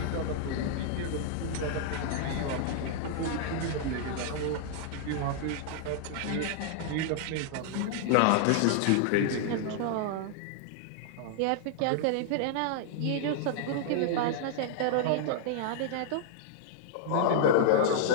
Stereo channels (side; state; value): both; different; correlation -0.01